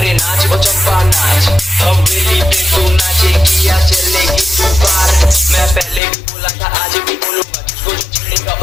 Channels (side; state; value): right; drops out; at 6.0 s